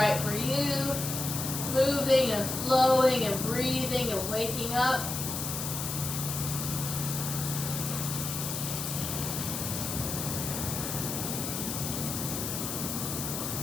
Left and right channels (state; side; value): noise; left; hiss, 4 dB below the sound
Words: for you. Moving and flowing and breathing and waking up.